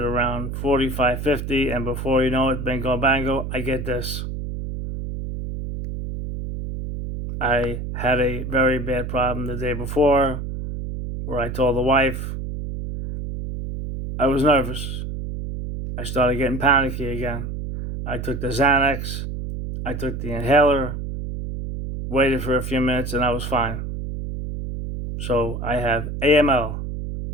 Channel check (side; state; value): right; noise; hum, 5 dB below the sound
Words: 45, 50, and before you know it, bingo bango, I get this. I had a very bad problem the day before where I told the wife, I was nervous. I started getting panicky again. I took the Xanax. I took the inhaler, waited for a few minutes, and I was fine. So I have AML,